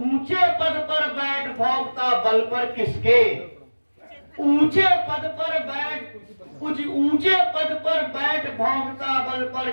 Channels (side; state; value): both; inverted; correlation -1.00